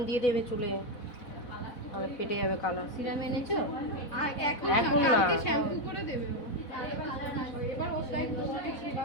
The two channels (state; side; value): late; right; 4.1 ms